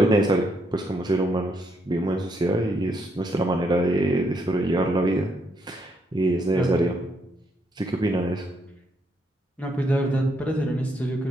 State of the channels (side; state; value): both; normal; correlation 0.75